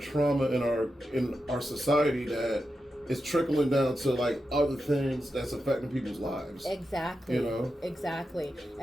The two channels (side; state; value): both; normal; correlation 0.89